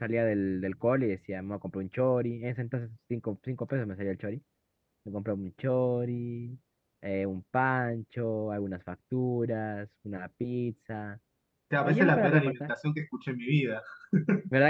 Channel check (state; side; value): identical; both; correlation 1.00